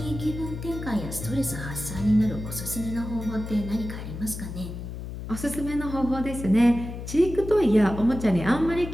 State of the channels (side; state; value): left; noise; hum, 8 dB below the sound